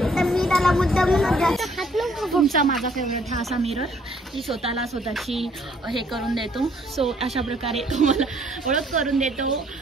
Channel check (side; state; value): both; normal; correlation 0.64